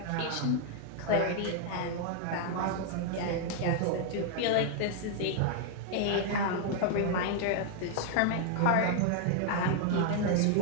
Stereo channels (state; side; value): different; both; correlation 0.00